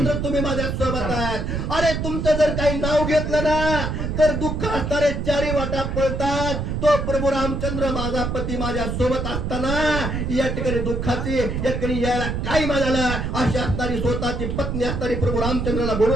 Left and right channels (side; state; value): right; noise; rumble, 2 dB below the sound